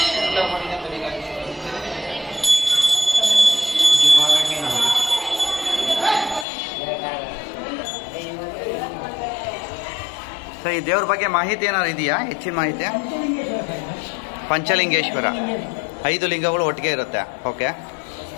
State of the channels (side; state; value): right; drops out; at 6.5 s